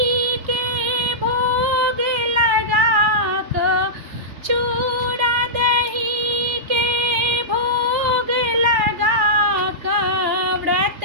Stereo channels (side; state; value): left; late; 3.4 ms